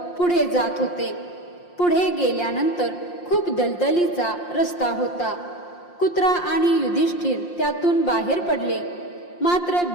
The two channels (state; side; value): late; right; 5.7 ms